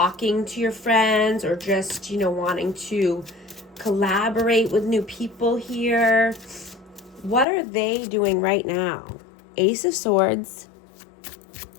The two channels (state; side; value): drops out; right; at 7.5 s